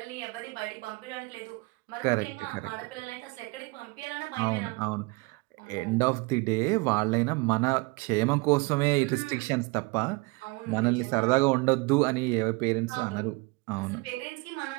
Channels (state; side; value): quieter; left; 26.7 dB